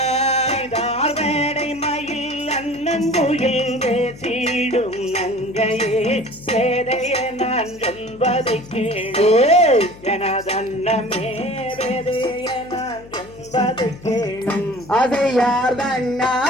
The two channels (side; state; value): left; noise; hum, 20 dB below the sound